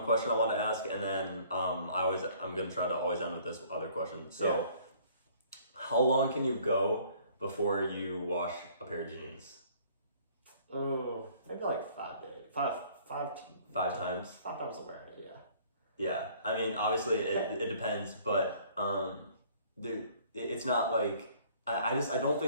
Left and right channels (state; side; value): inverted; both; correlation -0.56